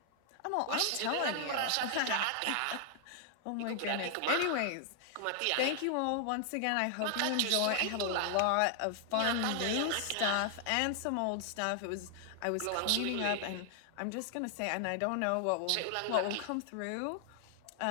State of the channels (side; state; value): both; different; correlation 0.00